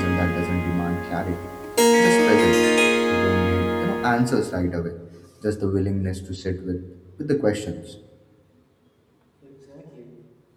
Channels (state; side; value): identical; both; correlation 1.00